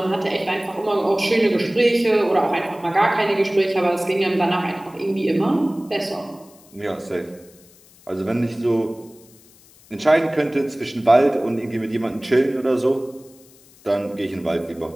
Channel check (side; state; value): left; noise; hiss, 26 dB below the sound